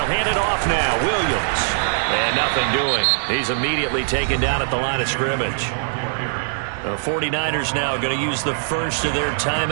hand it off now. Williams. And nothing doing. He's immediately taken down at the line of scrimmage. The 49ers now going to use the first of their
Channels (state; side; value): silent; left; digital silence